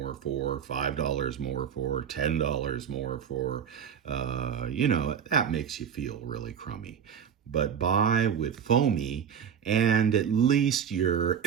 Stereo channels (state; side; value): quieter; left; 7.9 dB